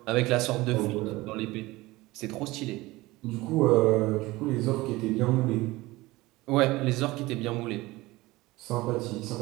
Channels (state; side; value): quieter; left; 20.0 dB